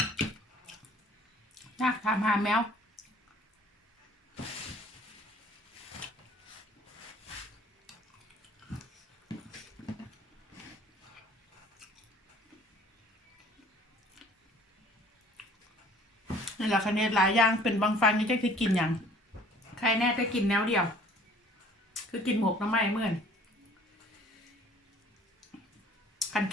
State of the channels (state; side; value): normal; both; correlation 0.53